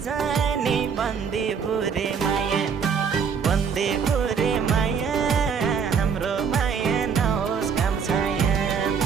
बन्दी बुरे माया बन्दी बुरे माया हाम्रो माया नहोस् काम छाया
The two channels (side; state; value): left; quieter; 6.4 dB